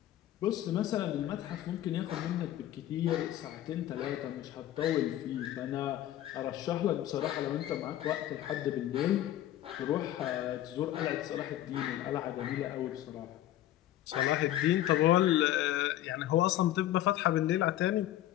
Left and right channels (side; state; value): right; quieter; 13.3 dB